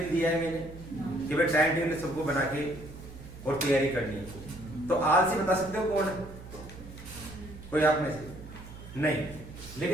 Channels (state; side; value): noise; right; hum, 15 dB below the sound